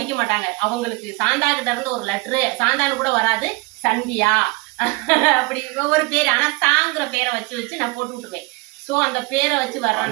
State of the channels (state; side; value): quieter; left; 24.7 dB